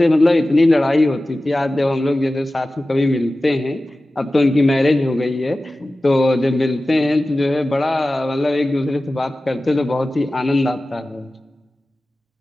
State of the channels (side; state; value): both; normal; correlation 0.96